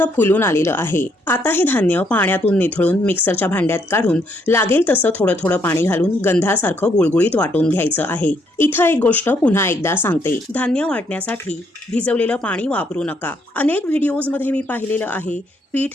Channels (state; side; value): normal; both; correlation 0.72